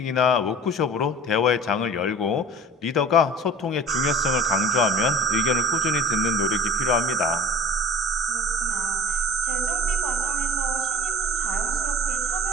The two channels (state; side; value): normal; both; correlation 0.40